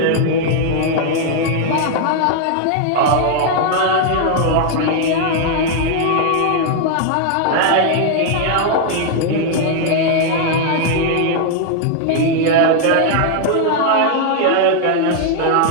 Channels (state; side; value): different; both; correlation 0.00